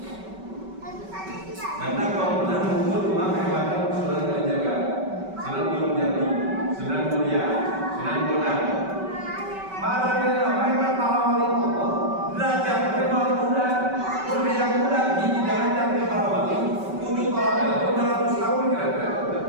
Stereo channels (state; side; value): late; left; 5.2 ms